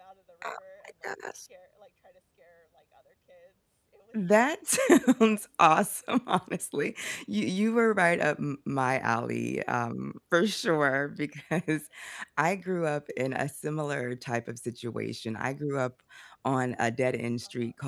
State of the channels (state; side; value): identical; both; correlation 1.00